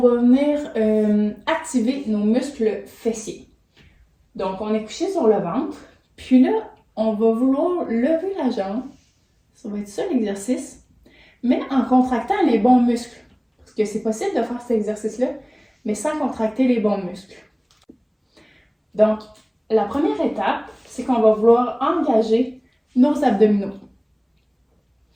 venir activer nos muscles fessiers. Donc on est couché sur le ventre, puis là, on va vouloir lever la jambe. Ça va être ça l'exercice, mais en contractant les bons muscles. Parce que c'est possible de faire cet exercice-là, mais sans contracter les bons muscles. Donc, la première étape, c'est qu'on va vouloir engager nos abdominaux.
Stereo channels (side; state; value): both; identical; correlation 1.00